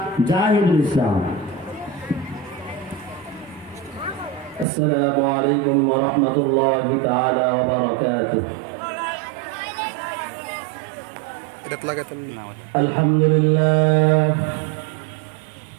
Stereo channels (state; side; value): drops out; left; at 4.7 s